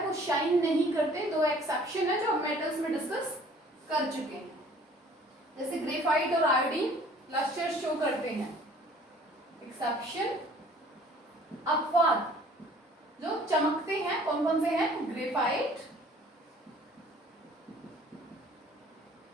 वो shine नहीं करते. दो exception है जो हम metals में discuss कर चुके हैं. जैसे ग्रेफाइट और आयोडीन लस्टर शो करते हैं. एक्सेप्शन अपवाद जो चमकते हैं कौन कौन से हैं? Graphite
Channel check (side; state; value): both; normal; correlation 0.53